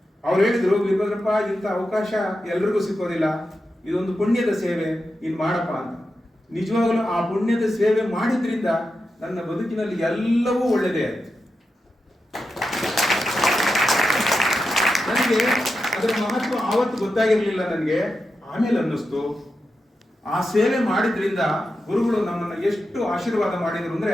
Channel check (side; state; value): both; normal; correlation 0.89